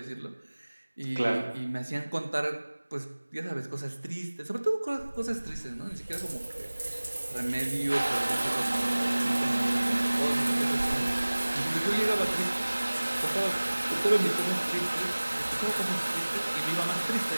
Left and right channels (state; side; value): inverted; both; correlation -1.00